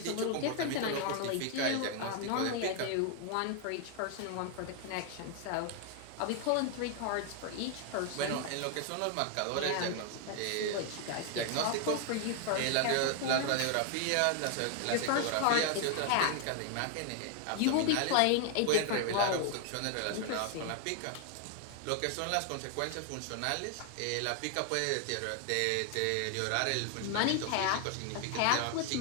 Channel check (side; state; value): both; different; correlation 0.00